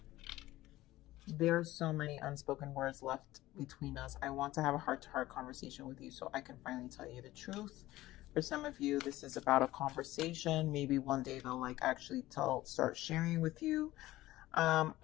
There's so many unspoken words left between us. I want to have a heart-to-heart conversation with you so I can finally tell you the truth. For some of you, this is about a conversation. Maybe one day they'll actually start sharing with you.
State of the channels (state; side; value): quieter; right; 16.6 dB